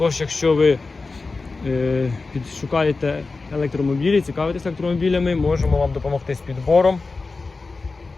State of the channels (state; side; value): quieter; right; 3.9 dB